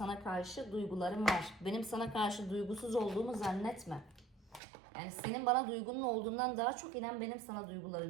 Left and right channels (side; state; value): left; drops out; at 4.6 s